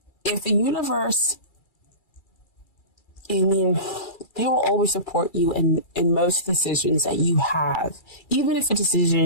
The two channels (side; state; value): right; late; 2.3 ms